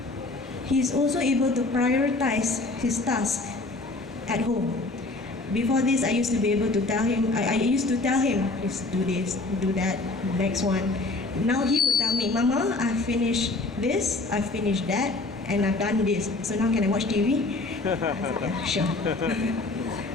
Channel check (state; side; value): quieter; right; 3.2 dB